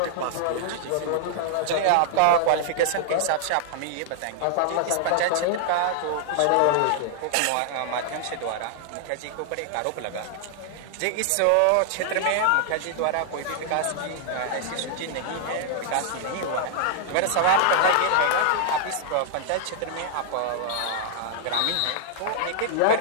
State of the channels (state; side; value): different; both; correlation -0.01